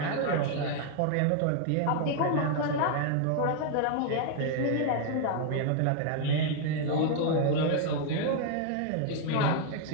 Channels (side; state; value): both; different; correlation 0.00